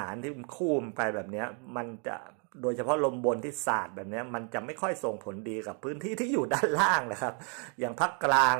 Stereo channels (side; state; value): left; quieter; 39.0 dB